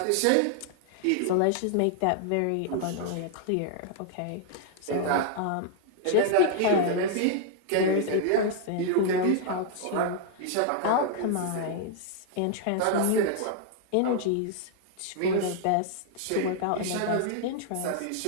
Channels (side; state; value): both; different; correlation 0.00